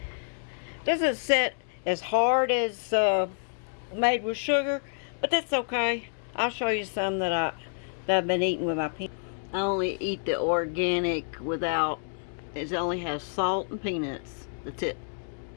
doesn't set as hard as made with sugar, but that's okay. I'll show you some that I've been eating with my peanuts. I only eat the organic without. It only has salt and peanuts. That's it.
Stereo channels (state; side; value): silent; right; digital silence